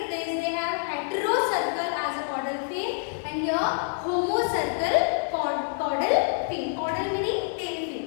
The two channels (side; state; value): right; silent; digital silence